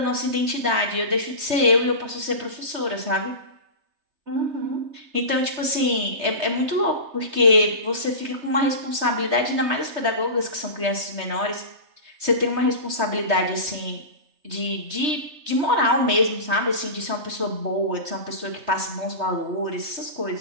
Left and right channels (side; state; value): left; late; 3.3 ms